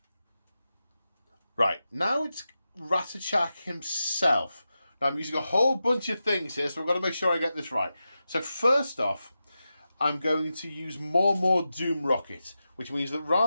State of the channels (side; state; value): both; inverted; correlation -0.91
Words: Right, now it's Ratchet himself. Now I'm using a whole bunch of things here, so I've got to make sure I get this right. So first off, I'm going to use more Doom Rocket, which means that